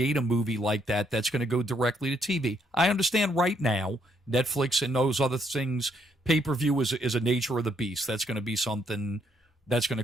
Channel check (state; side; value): normal; both; correlation 0.72